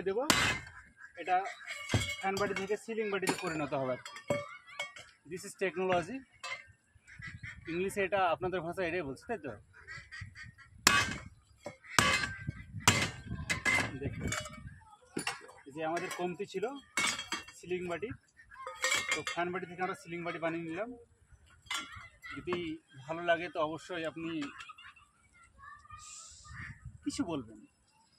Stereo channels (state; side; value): identical; both; correlation 1.00